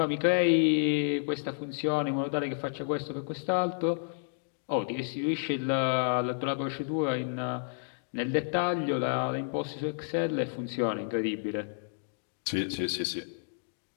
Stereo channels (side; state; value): right; silent; digital silence